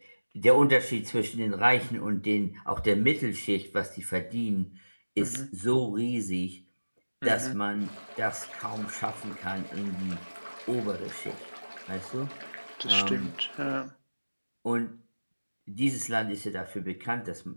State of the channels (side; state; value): both; inverted; correlation -1.00